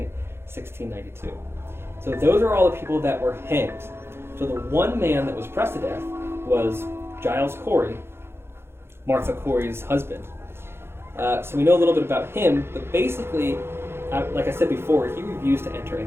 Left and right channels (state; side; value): late; left; 0.12 ms